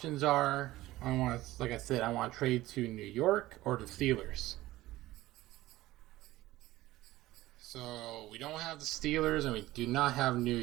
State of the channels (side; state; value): left; quieter; 16.9 dB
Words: are. I want to trade to New York or the Steelers. So we don't have the Steelers and we do not have New